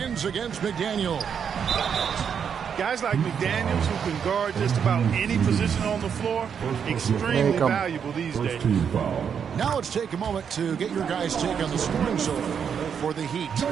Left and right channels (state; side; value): quieter; left; 7.4 dB